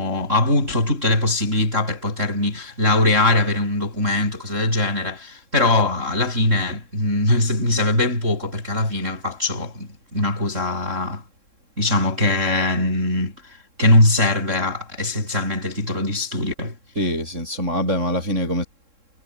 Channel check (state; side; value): late; left; 3.7 ms